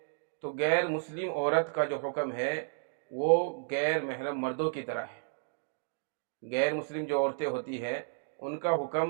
تو غیر مسلم عورت کا جو حکم ہے وہ غیر محرم مردوں کی طرح ہے۔ غیر مسلم جو عورتیں ہوتی ہیں ان کا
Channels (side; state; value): left; silent; digital silence